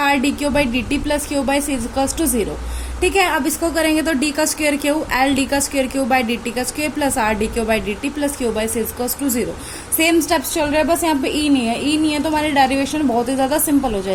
d q by d t plus q by c equals to 0। ठीक है, अब इसको करेंगे तो डी का स्क्वायर क्यू, एल डी का square q by d t का square plus are d q by d t plus q by c equals to 0। Same steps चल रहे हैं, बस यहाँ पे ई नहीं है। ई नहीं है तो हमारी डेरिवेशन बहुत ही ज्यादा सिंपल हो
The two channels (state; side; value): identical; both; correlation 1.00